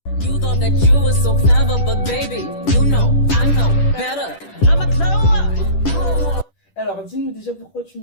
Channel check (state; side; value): late; right; 10 ms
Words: thought that you were so clever, but baby, you know, I know better. I'm a glow up. Alors, dis-nous déjà pourquoi tu